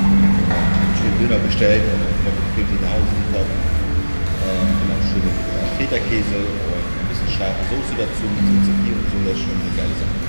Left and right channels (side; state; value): both; inverted; correlation -1.00